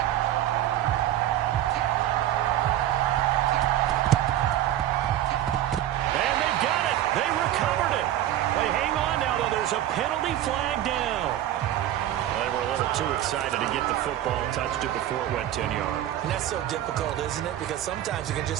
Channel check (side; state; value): left; quieter; 12.5 dB